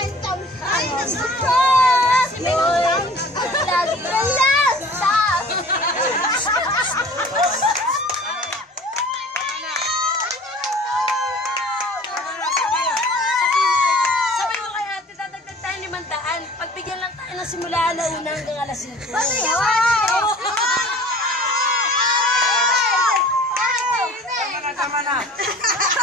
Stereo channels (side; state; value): both; normal; correlation 0.46